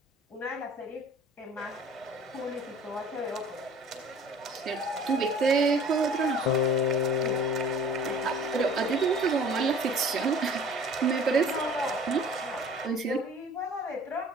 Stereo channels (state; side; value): normal; both; correlation 0.48